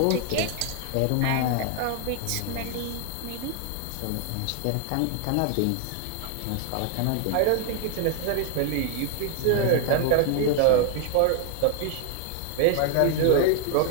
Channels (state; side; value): different; both; correlation 0.00